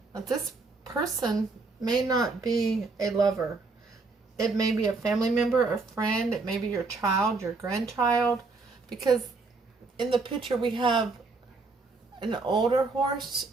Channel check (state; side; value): quieter; left; 3.9 dB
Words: Now, this person may not be a lover. It may be a family member, a friend. It may be your child, your grandchild. Because in the picture we have an older horse